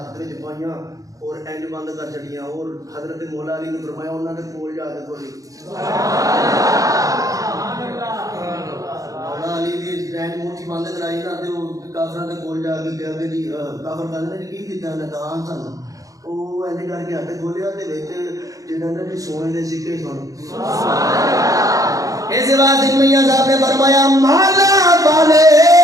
وچ پائیاں اور اینج بند کر چڑیاں. اور حضرت مولا علی نے فرمایا انہوں نے کول جا کے کھولی. مولا علی دی اینج موٹھی بند کرائی نا تے وہ کافراں دے کول جا کے کہا کہ جی کافر کہندے نے کی کیتا نے دان سن. وہ اینج کر کے ہاتھ کھولیا تے وچ جڑا نا جی سونے دے سکے سن. اس واسطے میاں صاحب نے فرمایا مالا والے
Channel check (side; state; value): left; late; 0.17 ms